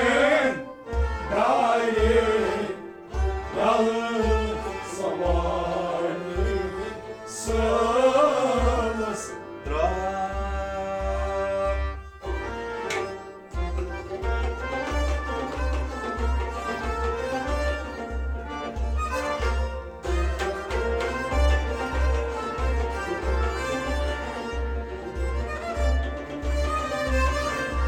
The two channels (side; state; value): both; identical; correlation 1.00